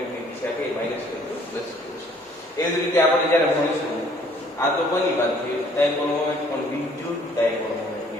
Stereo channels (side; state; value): both; normal; correlation 0.59